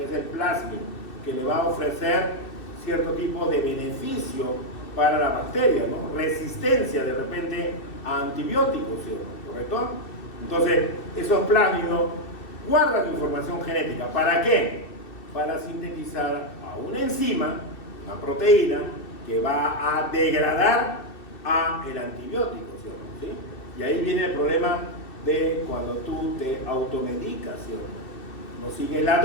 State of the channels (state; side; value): late; right; 2.7 ms